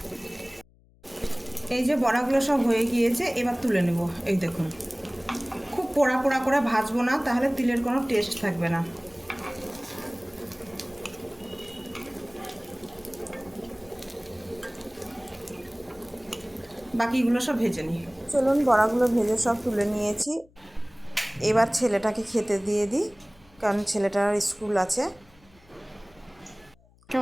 এই যে বড়াগুলো সব হয়ে গিয়েছে, এবার তুলে নেব। এই দেখুন খুব পোড়া পোড়া করে ভাজবো না, তাহলে তিলের কোনো টেস্ট থাকবে না। বাকিগুলো সব ভেজে নিই। চলুন বড়াগুলো ভেজে সব তুলে নিয়েছি। এবার ছেলেটাকে খেতে দিয়ে দিই, কারণ ছেলেটার স্কুল আছে।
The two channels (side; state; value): left; noise; hum, 30 dB below the sound